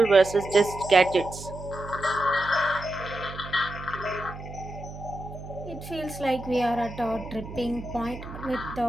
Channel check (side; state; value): right; noise; hum, 12 dB below the sound